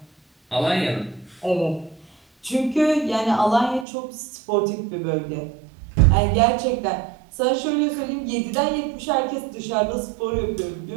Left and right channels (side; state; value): left; drops out; at 3.9 s